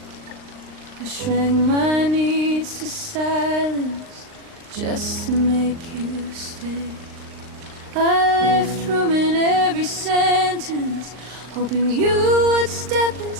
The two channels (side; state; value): left; late; 39 ms